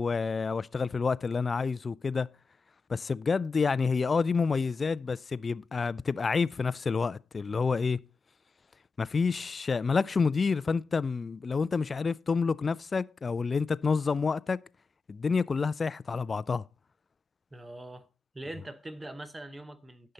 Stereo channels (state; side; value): quieter; right; 4.5 dB